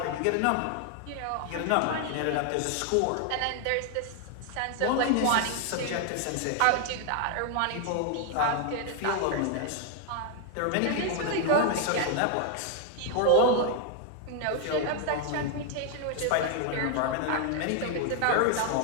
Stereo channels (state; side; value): different; both; correlation 0.00